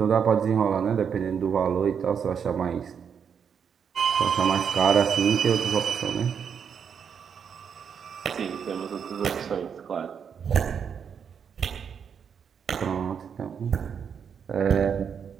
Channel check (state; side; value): quieter; left; 7.2 dB